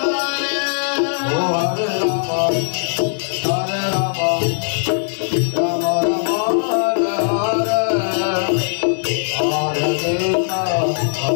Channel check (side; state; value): right; silent; digital silence